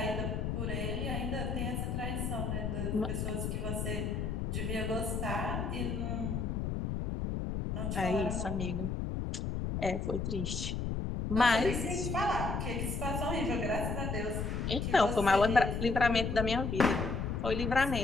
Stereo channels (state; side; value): noise; left; rumble, 2 dB below the sound